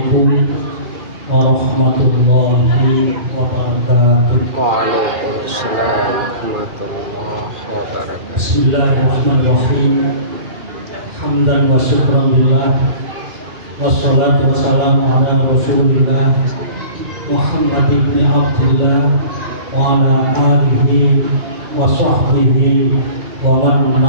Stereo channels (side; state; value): left; late; 2.4 ms